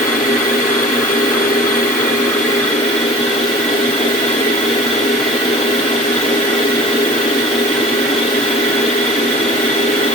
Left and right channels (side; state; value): both; normal; correlation 0.42